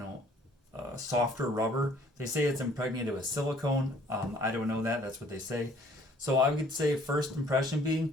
softer rubber. They say it's impregnated with silicone. I don't know that, that's what they say. So I would say first impression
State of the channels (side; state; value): both; normal; correlation 0.58